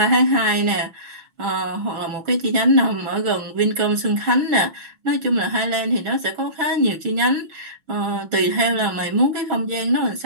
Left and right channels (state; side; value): late; left; 6.2 ms